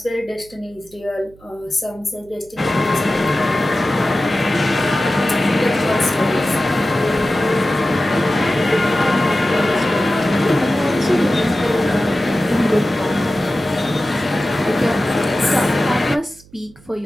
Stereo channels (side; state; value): right; noise; hum, 25 dB below the sound